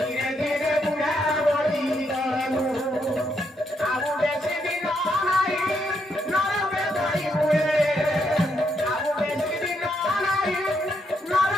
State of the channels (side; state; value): both; normal; correlation 0.77